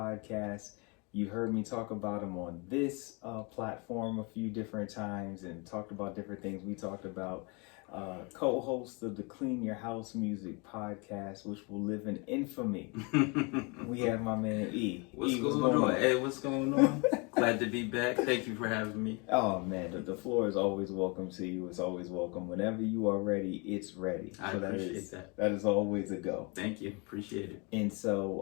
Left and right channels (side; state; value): right; quieter; 30.5 dB